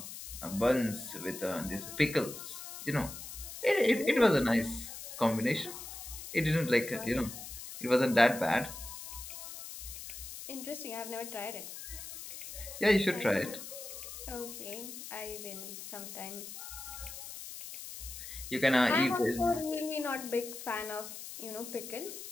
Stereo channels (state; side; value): noise; left; hiss, 10 dB below the sound